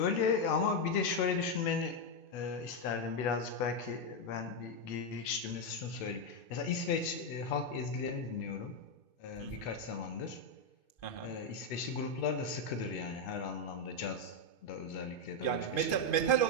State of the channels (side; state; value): right; late; 2.5 ms